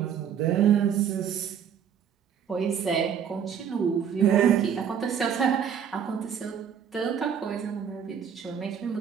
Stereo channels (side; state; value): left; quieter; 8.1 dB